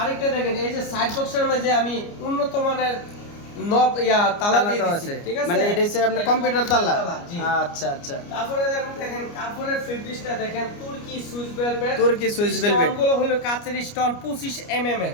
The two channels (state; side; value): late; right; 29 ms